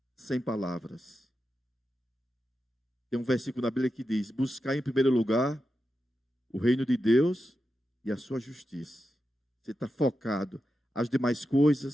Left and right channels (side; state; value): both; normal; correlation 0.89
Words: sem palavras. Tem um versículo na Bíblia que diz: buscar em primeiro lugar o reino de Deus e a sua justiça. Você está focado. As demais